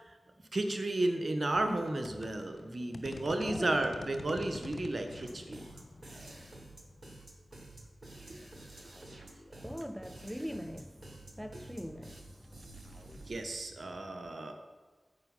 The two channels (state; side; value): normal; both; correlation 0.96